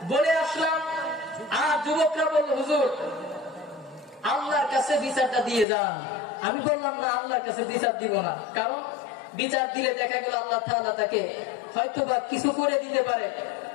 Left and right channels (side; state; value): right; drops out; at 5.7 s